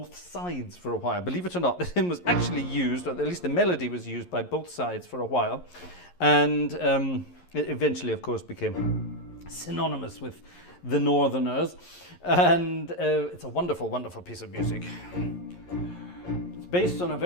sides for a while. Believe it or not, the hymn was actually used, or at least the melody was used by both sides for a while. And it eventually, of course, became synonymous with the Northerners, and it's a wonderful, wonderful piece of music. It's based on a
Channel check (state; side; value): late; right; 11 ms